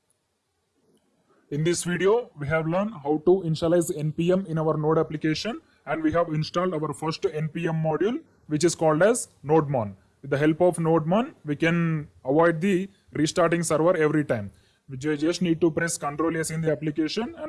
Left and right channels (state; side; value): identical; both; correlation 1.00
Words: In this video, we have learned how to initialize npm in our node application, and we have installed our first npm module, which is called as Nodemon. With the help of Nodemon, we can avoid the restarting server every time. We just need to press Ctrl S in the application,